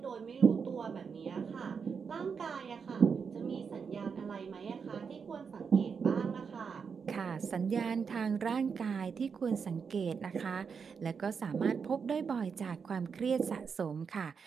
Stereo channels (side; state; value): left; quieter; 6.0 dB